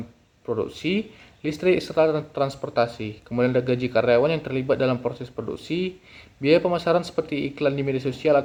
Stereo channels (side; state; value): both; identical; correlation 1.00